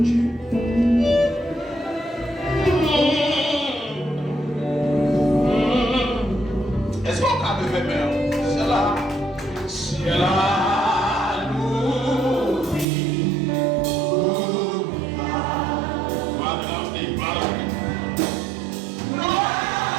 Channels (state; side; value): drops out; left; at 12.9 s